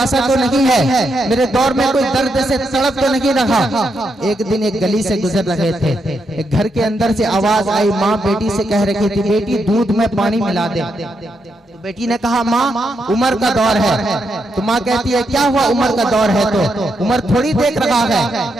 तो नहीं है, मेरे दौर में कोई दर्द से तड़प तो नहीं रहा। एक दिन एक गली से गुजर रहे थे, एक घर के अंदर से आवाज आई, माँ बेटी से कह रही थी बेटी दूध में पानी मिला दे। तो बेटी ने कहा माँ उमर का दौर है। तो माँ कहती है क्या हुआ उमर का दौर है तो उमर थोड़ी देख रहा है।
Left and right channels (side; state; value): both; normal; correlation 0.81